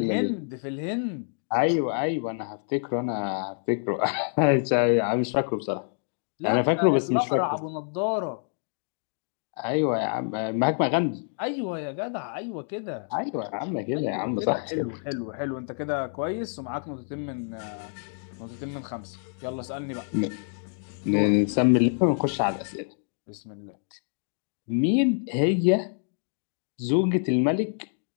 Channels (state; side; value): silent; right; 60 dB below the other